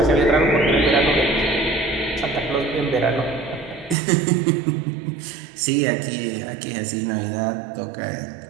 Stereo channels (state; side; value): drops out; left; at 4.0 s